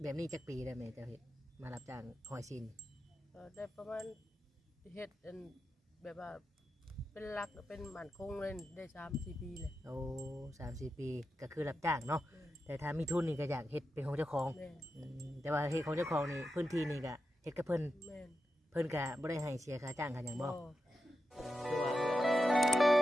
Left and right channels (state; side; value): normal; both; correlation 0.89